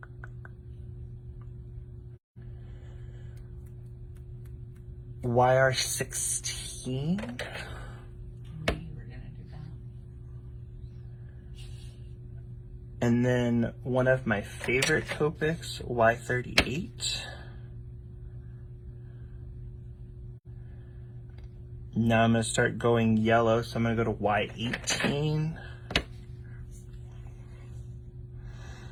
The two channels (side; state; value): both; identical; correlation 1.00